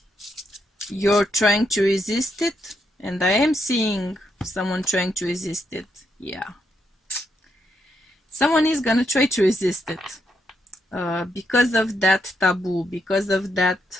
you're trying to resist it, and I am seeing someone trying to resist it, yeah. Someone is gonna try to resist it because of that taboo, because of that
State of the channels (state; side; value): normal; both; correlation 0.79